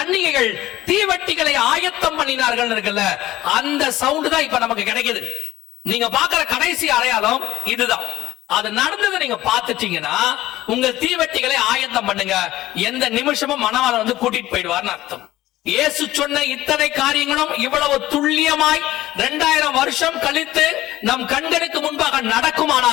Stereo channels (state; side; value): quieter; right; 15.6 dB